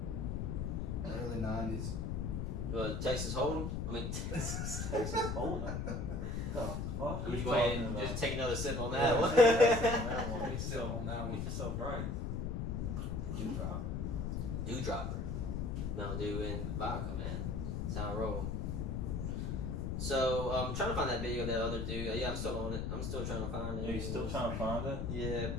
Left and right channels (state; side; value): noise; left; rumble, 1 dB below the sound